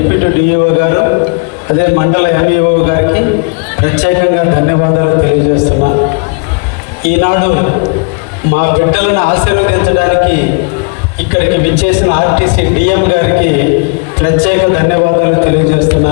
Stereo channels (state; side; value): quieter; right; 34.1 dB